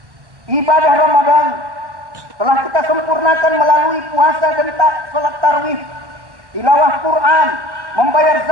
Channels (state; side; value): late; left; 1.1 ms